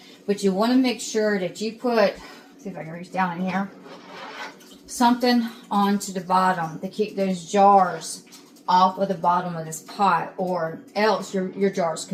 But you want to make sure that you put, see if I can reach down in here, something onto the bottom to keep those jars off of the bottom of this pot, or else your jars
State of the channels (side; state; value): both; identical; correlation 1.00